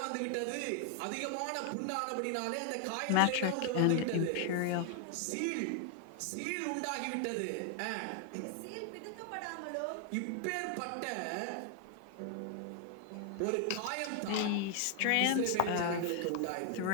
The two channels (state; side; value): different; both; correlation 0.00